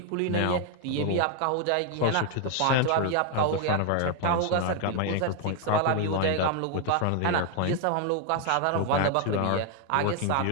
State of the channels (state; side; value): different; both; correlation 0.00